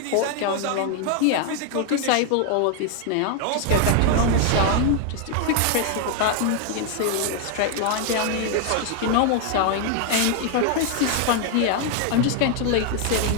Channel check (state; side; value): different; both; correlation 0.00